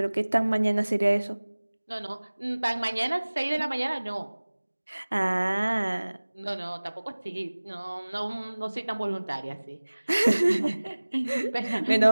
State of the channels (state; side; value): inverted; both; correlation -1.00